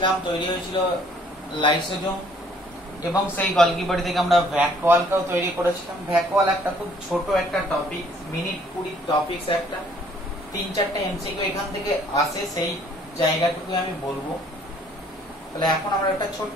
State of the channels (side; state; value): both; normal; correlation 0.60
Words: তৈরি হয়েছিল লাইসোজোম, এবং সেই গলগি বডি থেকে আমরা ভ্যাকুয়ালকেও তৈরি করেছিলাম। ভ্যাকুয়াল একটা খুব ছোট একটা টপিক, মিনিট 20 টপিকস, একটা 3-4টা এমসিকিউ এখান থেকে আসে, সেই জায়গাটুকু আমি বলবো। তাহলে এখন আমরা একটা ছোট্ট